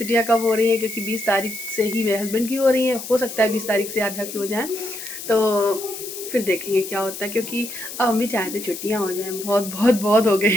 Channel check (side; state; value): left; noise; hiss, 10 dB below the sound